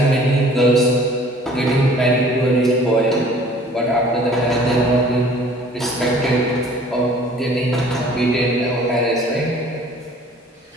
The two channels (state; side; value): normal; both; correlation 0.52